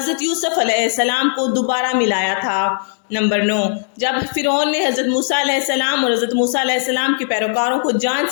یوسف علیہ السلام کو دوبارہ ملایا تھا۔ نمبر 9، جب فرعون نے حضرت موسیٰ علیہ السلام اور حضرت موسیٰ علیہ السلام کے پیروکاروں کو جان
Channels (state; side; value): silent; right; digital silence